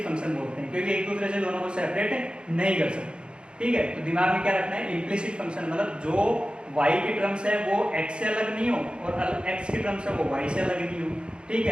फंक्शन बोलते हैं, क्योंकि एक दूसरे से दोनों को सेपरेट नहीं कर सकते, ठीक है। तो दिमाग में क्या रखना है इम्प्लिसिट फंक्शन, मतलब जो y के टर्म्स है वो x से अलग नहीं हो और x के टर्म्स है वो y से अलग नहीं हो, ठीक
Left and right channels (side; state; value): left; late; 0.053 ms